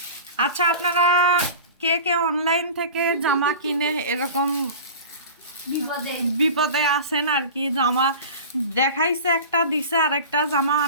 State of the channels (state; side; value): inverted; both; correlation -0.35